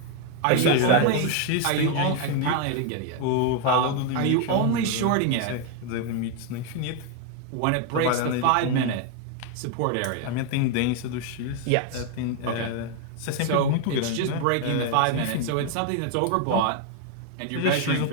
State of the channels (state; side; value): different; both; correlation 0.01